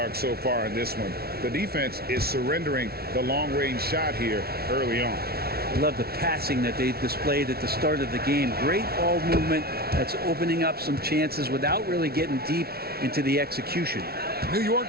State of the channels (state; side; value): late; left; 0.45 ms